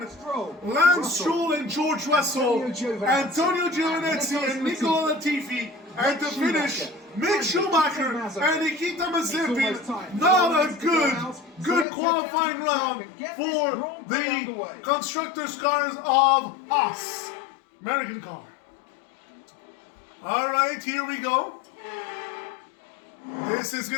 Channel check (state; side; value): drops out; right; at 11.9 s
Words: Lance Stroll and George Russell, Antonio Giovinazzi and Nicola Latifi, and to finish, Mick Schumacher and Nikita Mazepin. Not a good qualifying round for the constructors' cars of us, American car. All right, here we go. This is